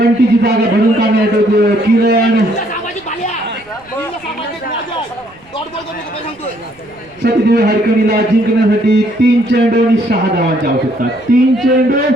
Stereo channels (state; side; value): noise; right; rumble, 30 dB below the sound